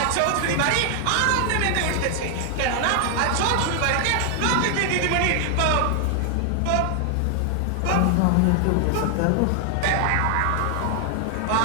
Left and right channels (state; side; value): different; both; correlation 0.00